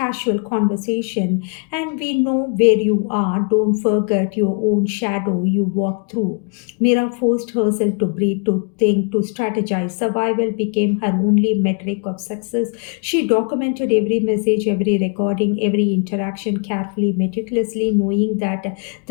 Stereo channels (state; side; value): quieter; right; 38.5 dB